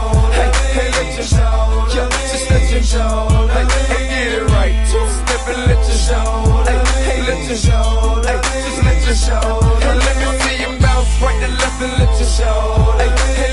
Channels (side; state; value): both; identical; correlation 1.00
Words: Hey, hey, let you show. Yo, just let you show. Hey, hey, get it right. Two-step and let you show. Hey, hey, let you show. Hey, just let you show. Hey, let me see you bounce right and left and let you show. Hey, hey,